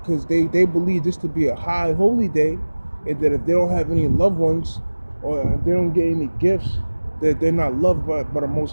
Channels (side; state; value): both; inverted; correlation -1.00